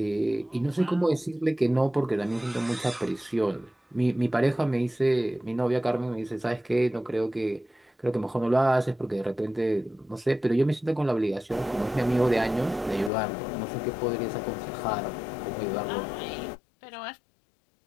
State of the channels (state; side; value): drops out; right; at 13.1 s